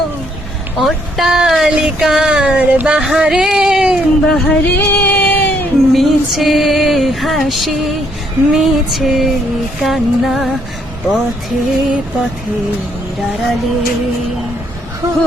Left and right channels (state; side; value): normal; both; correlation 0.70